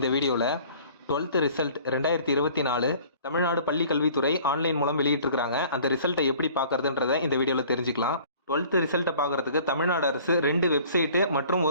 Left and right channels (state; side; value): inverted; both; correlation -0.51